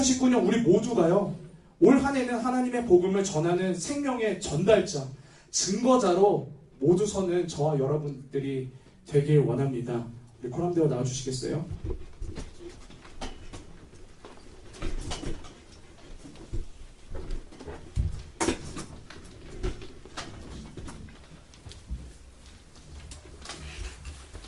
우리 모두가요, 올 한 해는 하나님의 복음을 전하는 생명의 전달자, 증거자로 모두 서는 저와 여러분들이 되길 원합니다. 우리 코람대로 나와주시겠어요?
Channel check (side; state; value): both; identical; correlation 1.00